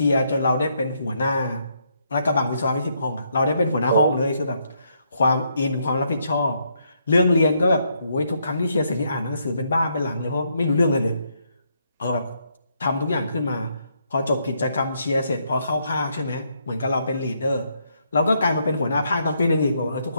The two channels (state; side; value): inverted; both; correlation -0.75